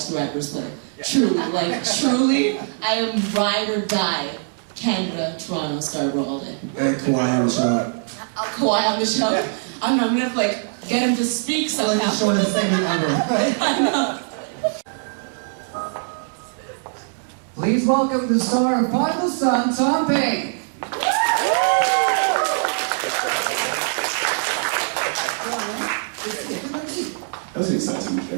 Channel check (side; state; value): left; silent; digital silence